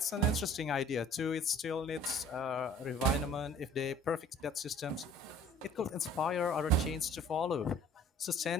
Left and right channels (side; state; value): both; normal; correlation 0.51